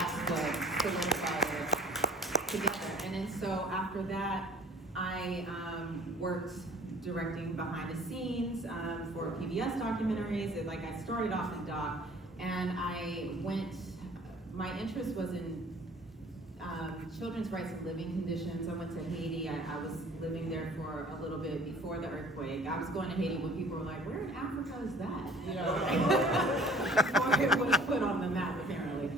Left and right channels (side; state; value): both; normal; correlation 0.51